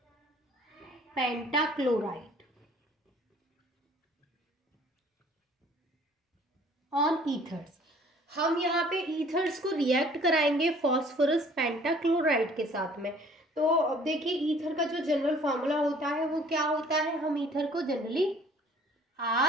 pentachloride on ethers. हम यहाँ पे ईथर्स को रिएक्ट कराएंगे फॉस्फोरस पेंटाक्लोराइड के साथ में। तो अब देखिए ईथर का जो जनरल फार्मूला होता है वो क्या होता है, हम ईथर को जनरली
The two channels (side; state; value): both; normal; correlation 0.55